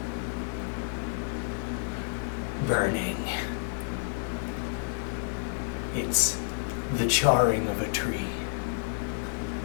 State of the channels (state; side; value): silent; right; 58 dB below the other